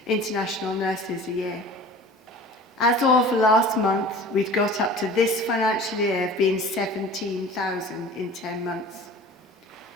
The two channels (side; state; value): both; normal; correlation 0.42